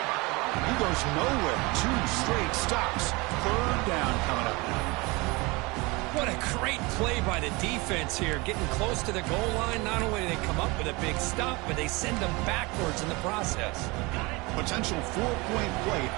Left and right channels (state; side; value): quieter; left; 25.1 dB